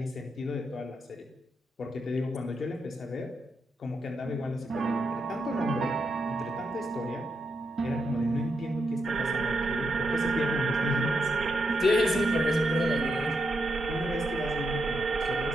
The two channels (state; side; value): normal; both; correlation 0.82